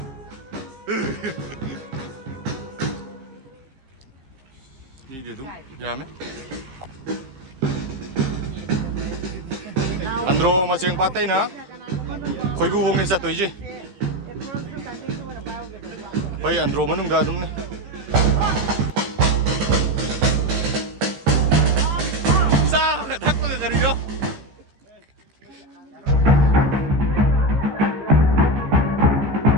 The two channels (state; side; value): late; left; 15 ms